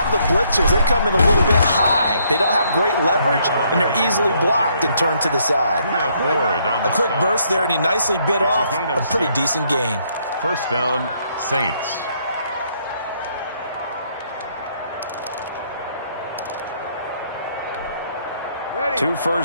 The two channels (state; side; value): inverted; both; correlation -0.70